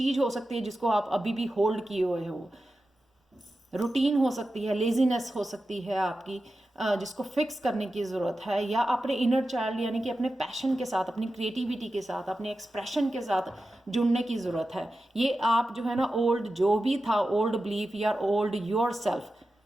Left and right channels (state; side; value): normal; both; correlation 0.92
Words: हो सकती है जिसको आप अभी भी होल्ड किए हुए हो। रूटीन हो सकती है, लेजीनेस हो सकती है आपकी, जिसको फिक्स करने की ज़रूरत है, या अपने इनर चाइल्ड यानी कि अपने पैशन के साथ, अपनी क्रिएटिविटी के साथ, अपने एक्सप्रेशन के साथ जुड़ने की ज़रूरत है। ये आप जो है ना ओल्ड जो भी था, ओल्ड बिलीफ या ओल्ड योर सेल्फ,